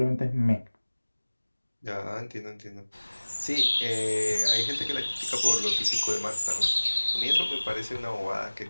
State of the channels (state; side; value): inverted; both; correlation -1.00